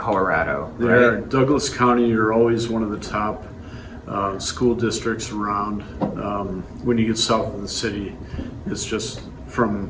Right? Douglas County are always one of the top school districts around. When you get south of the city, it's just from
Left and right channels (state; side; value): identical; both; correlation 1.00